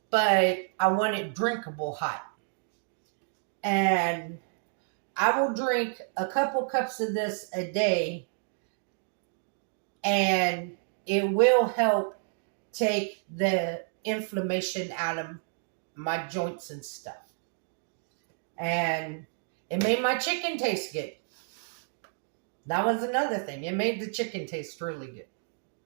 but I want it drinkable hot. And I will drink a couple cups of this a day, and it will help take the inflammation out of my joints and stuff. And it made my chicken taste good. That was another thing. It made the chicken taste really good.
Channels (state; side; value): silent; left; digital silence